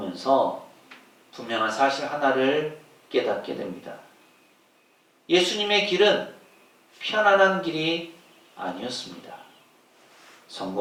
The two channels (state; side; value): identical; both; correlation 1.00